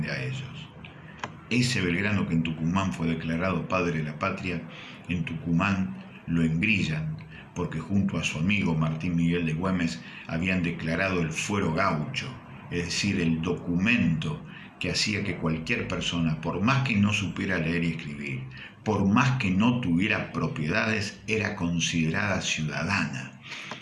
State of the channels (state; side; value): identical; both; correlation 1.00